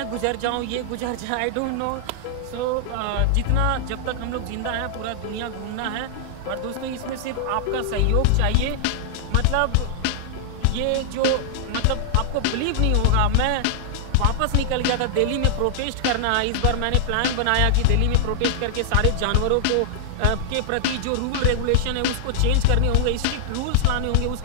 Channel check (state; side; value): different; both; correlation 0.00